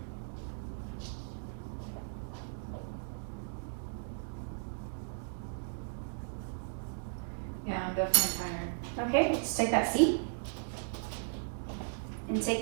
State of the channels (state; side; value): silent; left; digital silence